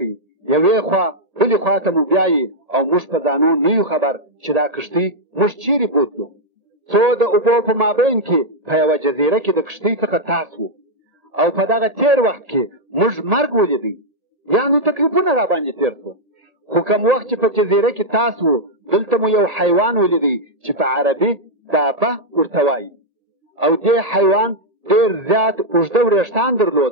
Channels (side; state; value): left; late; 1.6 ms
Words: یوې خوا بلې خوا ته مو بیایي او موږ په ځانو نه یو خبر چې دا کښتۍ موږ چیرې بوتلو. څو د اوبو په مابین کې په یوه جزیره کې د کښتۍ څخه تاس وو او په دغه تیر وخت کې موږ مرګ ولیدی، یعنې تکلیفونه را باندې تیر سو. خو کوم وخت چې په جزیره کې تاس وو دلته مو یو حیوان ولیدی چې په عربي دابه ورته وایي او دې حیوان ډېر زیات اوږده وریښتان